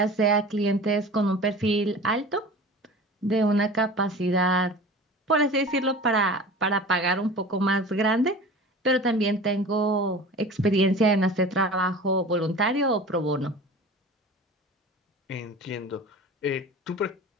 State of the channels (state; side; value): normal; both; correlation 0.38